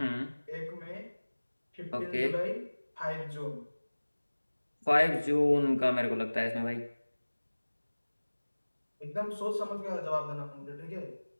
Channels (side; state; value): both; inverted; correlation -1.00